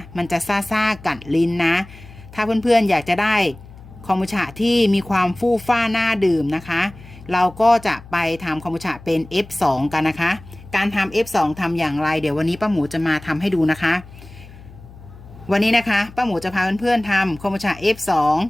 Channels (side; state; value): left; noise; hum, 19 dB below the sound